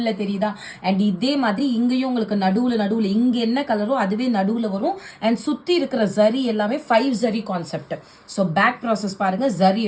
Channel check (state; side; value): identical; both; correlation 1.00